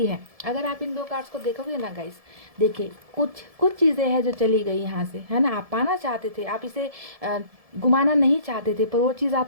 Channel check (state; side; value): late; left; 1.7 ms